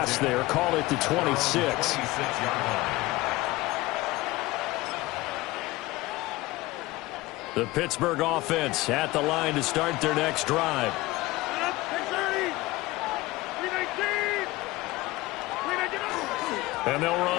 there. Call it the 26. The Pittsburgh offense at the line to start their next drive. And they'll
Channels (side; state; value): right; quieter; 19.8 dB